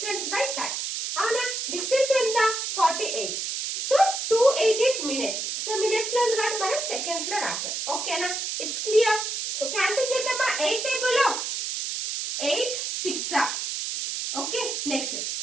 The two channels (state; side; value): noise; right; hiss, 3 dB below the sound